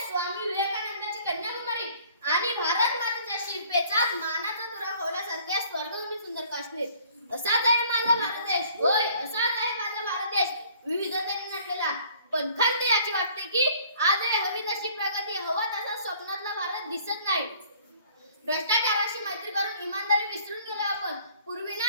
स्वामी विवेकानंदाची कन्याकुमारी आणि भारत मातेच्या शिल्पेचाच मानाचा तुरा खोवल्यासारख्या स्वर्गभूमी सुंदर काश्मीर। असाच आहे माझा भारत देश, होय असाच आहे माझा भारत देश, विविधतेने नटलेला। पण खंत याची वाटते की आज हवी तशी प्रगती, हवा तसा स्वप्नातला भारत दिसत नाही। भ्रष्टाचाराशी मैत्री करून इमानदारी विसरून गेलो आपण। पूर्वी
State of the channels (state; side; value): inverted; both; correlation -0.56